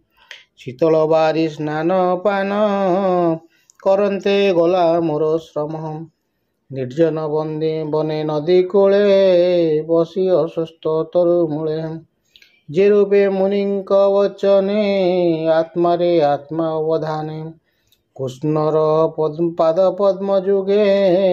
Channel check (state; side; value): identical; both; correlation 1.00